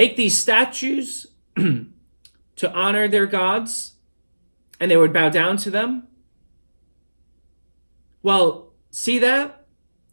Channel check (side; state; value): both; inverted; correlation -1.00